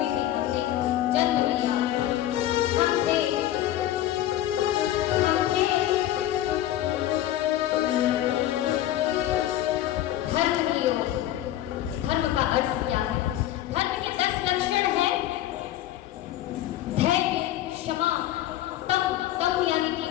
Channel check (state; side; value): quieter; right; 13.2 dB